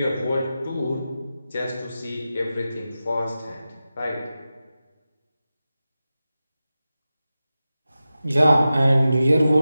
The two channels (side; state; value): both; inverted; correlation -0.94